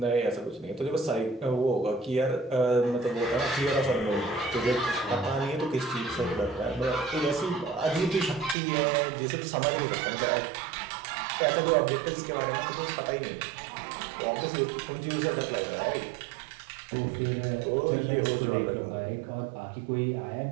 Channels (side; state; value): left; drops out; at 8.6 s